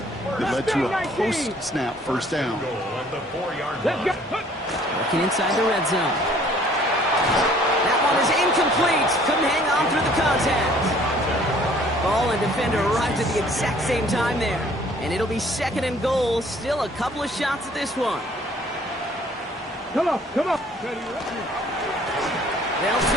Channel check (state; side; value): normal; both; correlation 0.57